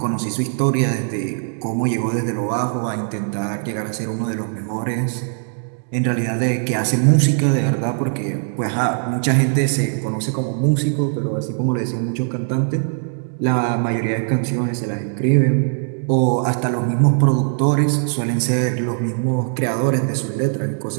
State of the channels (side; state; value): left; silent; digital silence